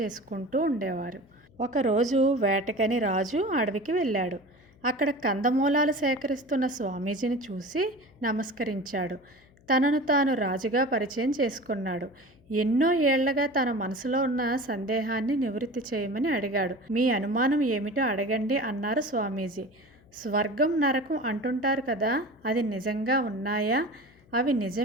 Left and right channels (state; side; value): noise; left; hum, 29 dB below the sound